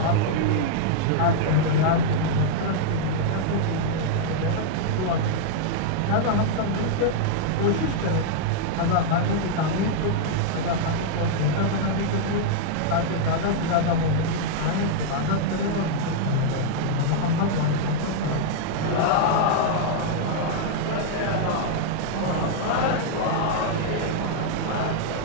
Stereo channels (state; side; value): different; both; correlation -0.01